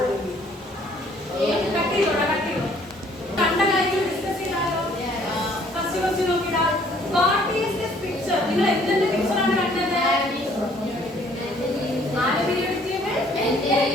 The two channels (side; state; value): both; normal; correlation 0.60